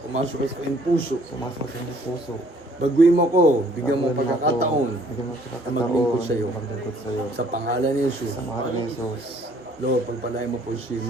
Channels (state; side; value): normal; both; correlation 0.60